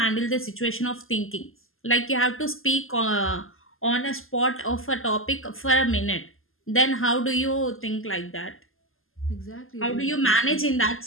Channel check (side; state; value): right; late; 0.60 ms